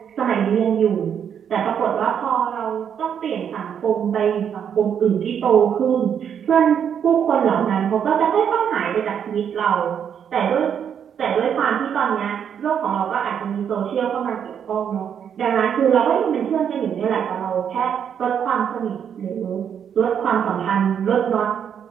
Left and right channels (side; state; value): left; quieter; 8.2 dB